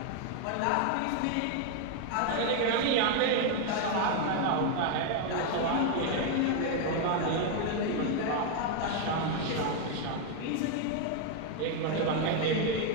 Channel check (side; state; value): both; different; correlation 0.01